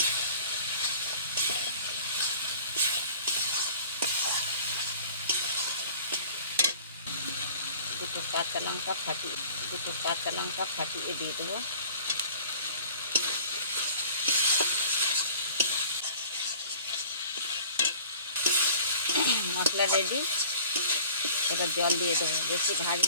দুটো কাঁচা লঙ্কা ফাটিয়ে দিয়ে দেবো। মশলা রেডি। এবার জল দিয়ে দেবো, বেশি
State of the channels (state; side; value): inverted; both; correlation -0.47